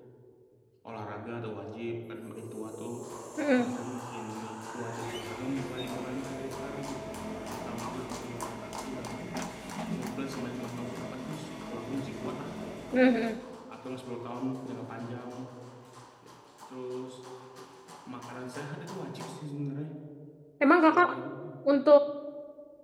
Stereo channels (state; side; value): identical; both; correlation 1.00